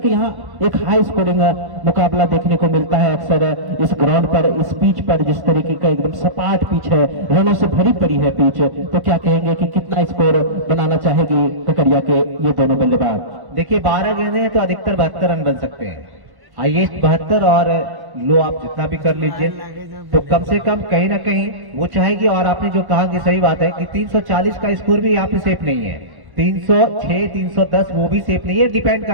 यहाँ एक हाई स्कोरिंग मुकाबला देखने को मिलता है अक्सर इस ग्राउंड पर, इस पिच पर, जिस तरीके का एकदम सपाट पिच है, रनों से भरी पड़ी है पिच, तो क्या कहेंगे कि कितना स्कोर बनाना चाहेगी ककरिया के ये दोनों बल्लेबाज? देखिए 12 गेंदें हैं तो अधिकतर 72 रन बन सकते हैं, हाईएस्ट 72, और लो आप जितना भी कर लीजिए तो कम से कम कहीं ना कहीं वो चाहेगी। और आपने जो कहा कि सही बात है कि 340 का स्कोर भी यहाँ पे सेफ नहीं है, 306 310 वो भी सेफ नहीं है, डिपेंड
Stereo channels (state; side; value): late; left; 1.1 ms